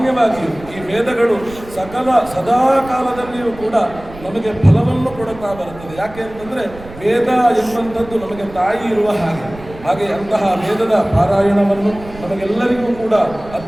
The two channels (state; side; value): noise; right; rumble, 17 dB below the sound